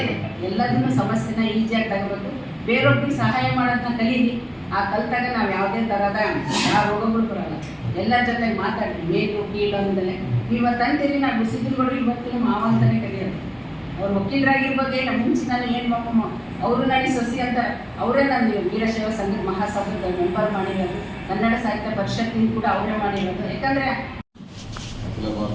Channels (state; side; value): identical; both; correlation 1.00